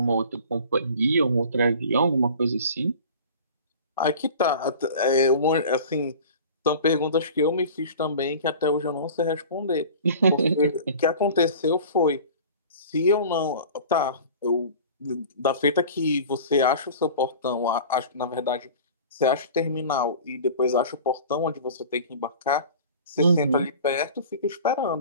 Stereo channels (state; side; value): inverted; both; correlation -0.40